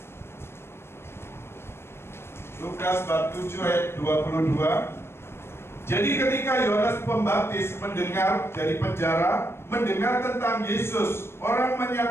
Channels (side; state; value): right; late; 0.12 ms